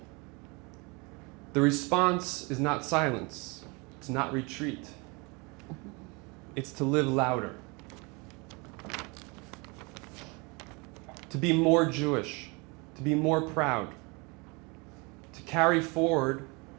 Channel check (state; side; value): quieter; left; 28.7 dB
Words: The response is not silence. It's not retreat. It's to live louder. To be more Jewish. To be more proud. To carry forward